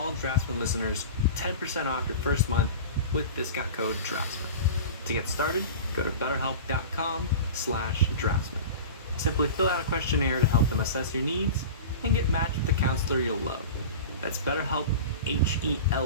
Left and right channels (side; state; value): both; inverted; correlation -0.33